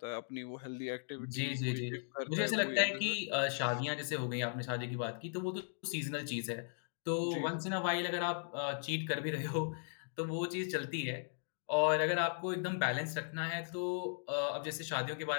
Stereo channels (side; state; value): right; silent; digital silence